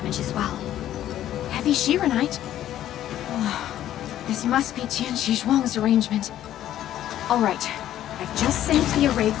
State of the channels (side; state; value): right; quieter; 12.2 dB